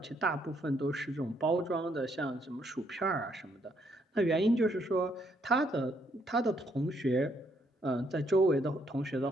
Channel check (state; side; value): normal; both; correlation 0.71